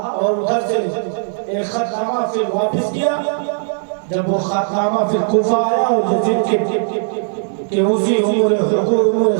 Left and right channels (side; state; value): left; silent; digital silence